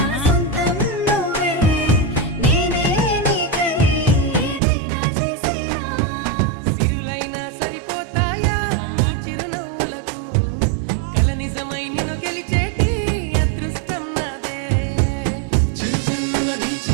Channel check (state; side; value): drops out; left; at 4.6 s